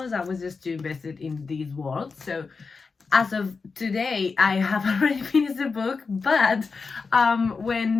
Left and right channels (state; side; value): quieter; right; 4.7 dB